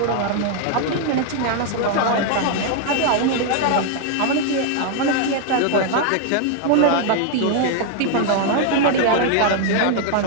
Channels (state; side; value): different; both; correlation 0.00